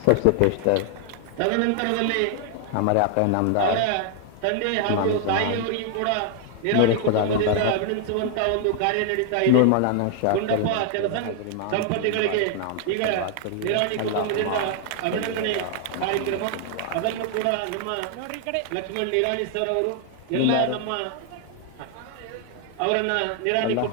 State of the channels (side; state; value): both; different; correlation 0.00